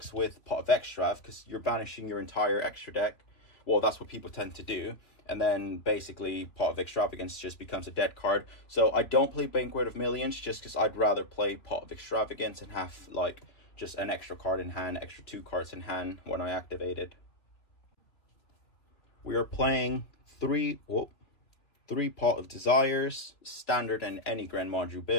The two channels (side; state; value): right; late; 3.1 ms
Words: with Pot of Extrav, because you're banishing your entire extra deck. Well, that's what people tend to do. And then basically Pot of Extravagance just becomes a dead card. So I don't play Banquet of Millions just because I'd rather play Pot of Extravagance and have like just an extra card in hand, extra 2 cards in hand when I activate it. We are playing 3 Pot of Desires, standard in any GREN MAJU